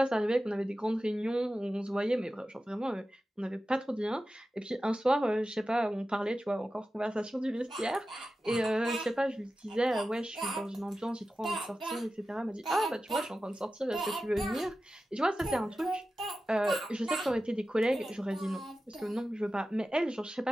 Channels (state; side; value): normal; both; correlation 0.93